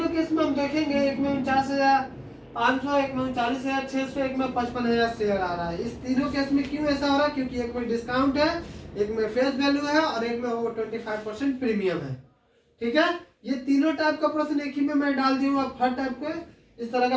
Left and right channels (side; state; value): both; identical; correlation 1.00